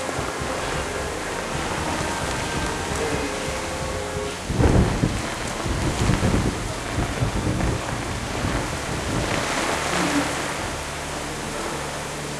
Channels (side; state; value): both; identical; correlation 1.00